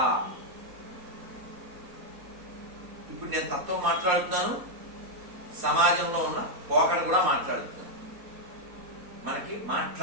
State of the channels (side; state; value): left; late; 4.1 ms